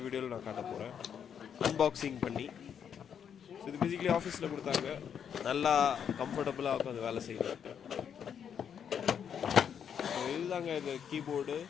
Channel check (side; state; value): right; quieter; 8.0 dB